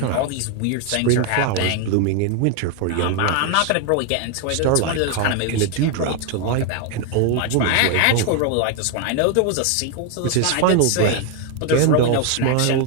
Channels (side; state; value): both; different; correlation 0.01